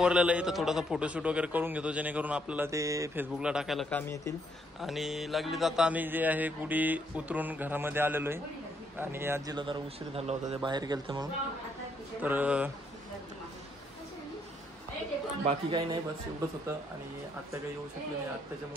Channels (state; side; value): normal; both; correlation 0.72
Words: आहे तर थोडासा फोटोशूट वगैरे करून घेतो जेणेकरून आपल्याला ते फेसबुकला टाकायला काम येतील. आणि लागली जाता आम्ही जे आहे गुढी उतरून घरामध्ये आलेलो आहे आणि आजीला जरा उशीर झाला होता ते बाहेर गेलते म्हणून. तर बाकी काही नाही बस एवढंच होतं. आणि आत्या काही येऊ शकले नाही आत्याच्या